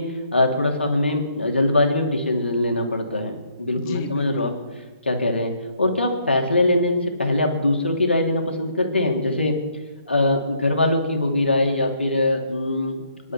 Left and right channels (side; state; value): both; inverted; correlation -0.69